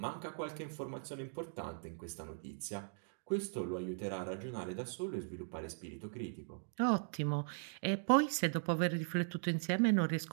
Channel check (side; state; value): left; silent; digital silence